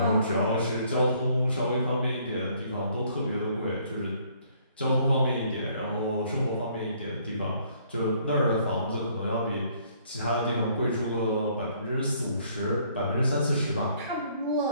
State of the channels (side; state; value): both; inverted; correlation -0.64